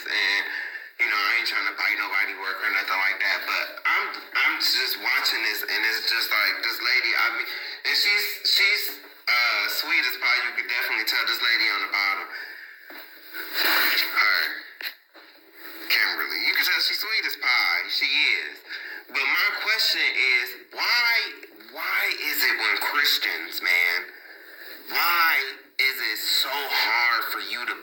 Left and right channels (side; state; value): both; identical; correlation 1.00